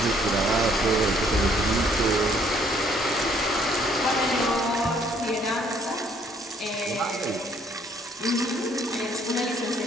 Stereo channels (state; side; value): normal; both; correlation 0.64